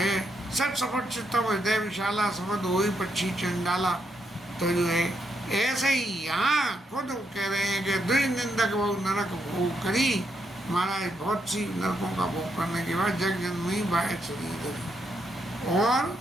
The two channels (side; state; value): both; normal; correlation 0.79